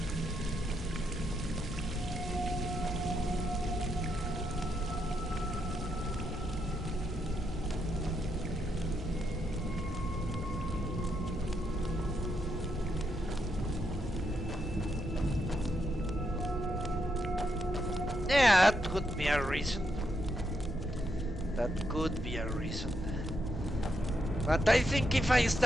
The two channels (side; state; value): both; normal; correlation 0.80